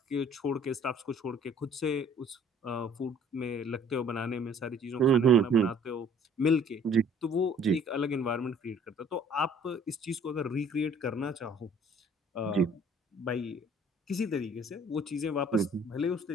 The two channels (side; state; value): both; normal; correlation 0.55